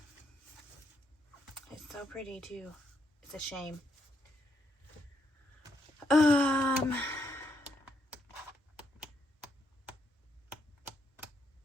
It's so pretty too. It's a shame.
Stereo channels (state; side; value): normal; both; correlation 0.77